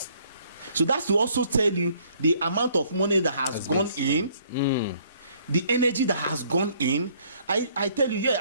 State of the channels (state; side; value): inverted; both; correlation -0.63